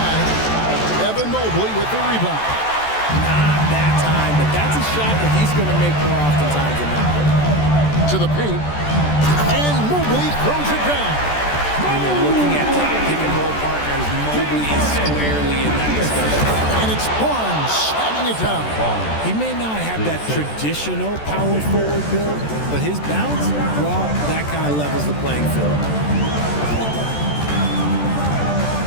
Evan Mobley with the rebound. Not that time, but that's a shot that he's going to make more oftentimes than not. To the paint. And Mobley throws it down. When you're looking at top pick-and-roll partners, Mobley is squarely in that discussion. And it's Barnes slamming it down. He may not have that traditional power forward build, but his bounce, well, that kind of levels the playing field.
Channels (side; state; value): right; late; 14 ms